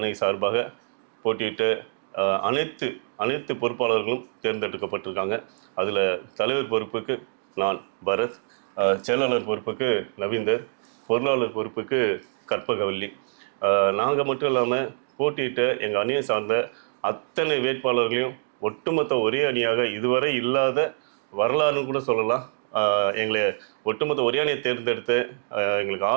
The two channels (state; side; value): silent; left; digital silence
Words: சார்பாக போட்டியிட்ட அனைத்து பொறுப்பாளர்களும் தேர்ந்தெடுக்கப்பட்டிருக்காங்க. அதில் தலைவர் பொறுப்புக்கு நான் பரத், செயலாளர் பொறுப்புக்கு நவீந்தர், பொருளாளர் பொறுப்புக்கு கற்பகவல்லி. நாங்கள் மட்டும் இல்லாமல் போட்டியிட்ட எங்கள் அணியை சார்ந்த அத்தனை வேட்பாளர்களையும் ஒட்டுமொத்த ஒரே அணியாக இதுவரை இல்லாத வரலாறுன்னு கூட சொல்லலாம். எங்களை ஒட்டுமொத்த ஒரே அணியை தேர்ந்தெடுத்து எங்களுக்கு